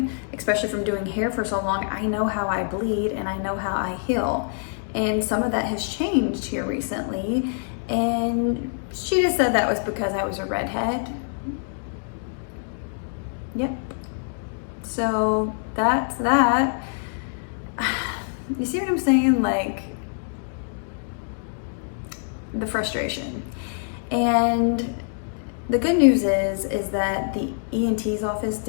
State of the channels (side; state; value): right; silent; digital silence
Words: especially from doing hair for so long, I know how I bleed and I know how I heal. And some of that has changed here recently. And she just said that was because I was a redhead. Yep. So that's that. You see what I'm saying? Like, the frustration. And the good news is that the ENT's office